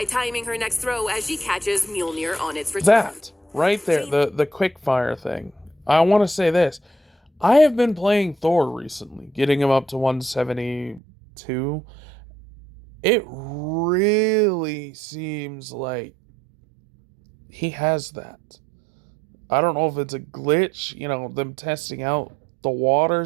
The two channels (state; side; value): drops out; left; at 11.0 s